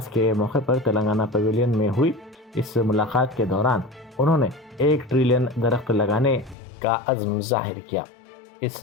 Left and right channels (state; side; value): drops out; right; at 6.6 s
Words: के मौके पर तेलंगाना पवेलियन में हुई। इस मुलाकात के दौरान उन्होंने 1 ट्रिलियन दरख्त लगाने का अज़्म जाहिर किया।